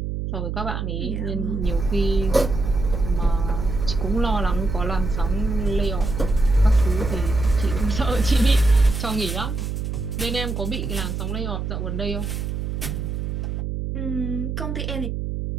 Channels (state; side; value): noise; right; hum, 3 dB below the sound